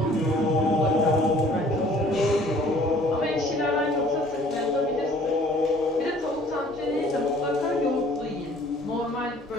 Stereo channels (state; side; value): normal; both; correlation 0.54